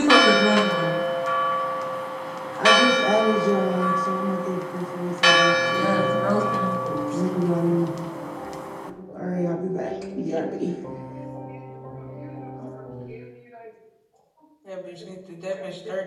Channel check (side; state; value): both; identical; correlation 1.00